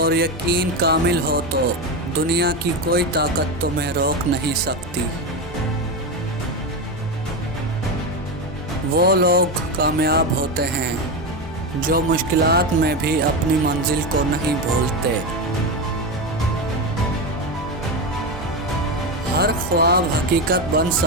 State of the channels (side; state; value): both; normal; correlation 0.15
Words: یقین کامل ہو تو دنیا کی کوئی طاقت تمہیں روک نہیں سکتی۔ وہ لوگ کامیاب ہوتے ہیں جو مشکلات میں بھی اپنی منزل کو نہیں بھولتے۔ ہر خواب حقیقت بن